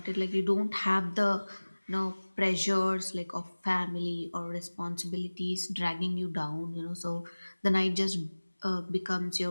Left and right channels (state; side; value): inverted; both; correlation -1.00